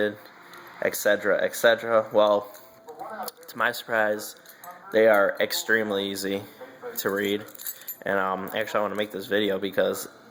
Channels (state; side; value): identical; both; correlation 1.00